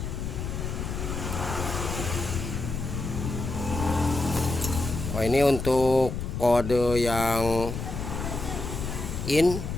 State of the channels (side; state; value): left; noise; rumble, 5 dB below the sound